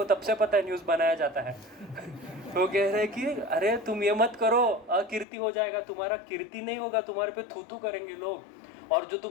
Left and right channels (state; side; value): drops out; right; at 5.2 s